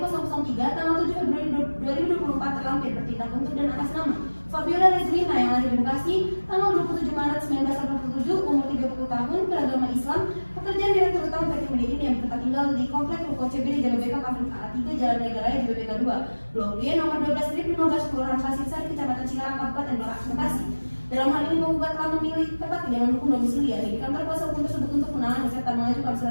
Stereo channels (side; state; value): both; inverted; correlation -1.00